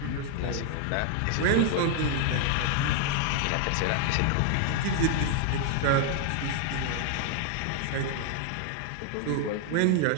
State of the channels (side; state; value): both; different; correlation 0.00